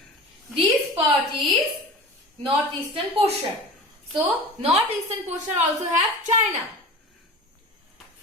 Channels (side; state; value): both; normal; correlation 0.35